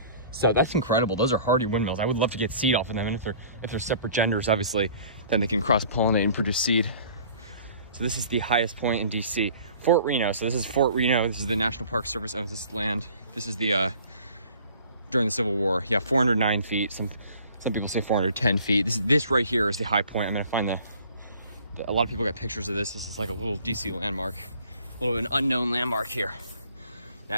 So that's incredible. Those are hardy windmills. I would love to get seed off of them. And if they're separate genders, obviously, then they can cross-pollinate and produce seed. So this is the highest point in DC. Fort Reno. So this is Fort Reno. This is the National Park Service owns this land. This is the, during the Civil War. Yeah, 409 feet. Some people say 410 feet. This right here is the high point. I'm gonna find a lot of people got pictures of this. This is like a little DC landmark. A little bit of an unknown landmark here.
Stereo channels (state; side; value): inverted; both; correlation -0.51